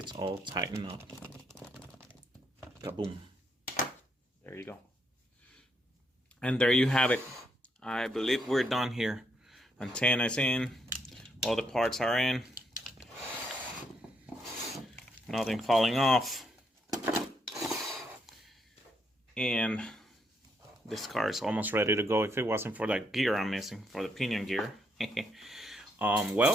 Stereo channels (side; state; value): both; normal; correlation 0.76